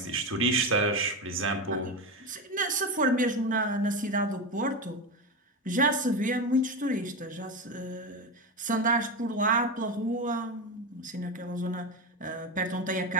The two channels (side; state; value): both; normal; correlation 0.17